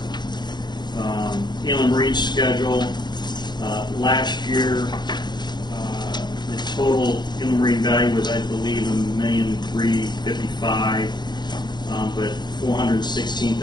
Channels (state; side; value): late; right; 0.21 ms